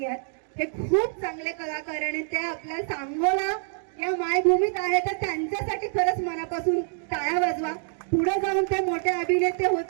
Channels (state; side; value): silent; left; 61 dB below the other